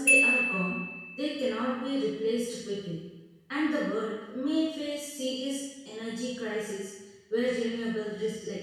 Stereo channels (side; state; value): both; identical; correlation 1.00